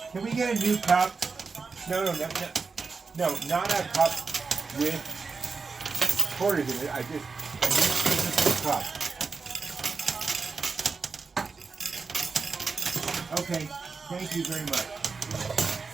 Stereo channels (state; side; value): quieter; left; 4.6 dB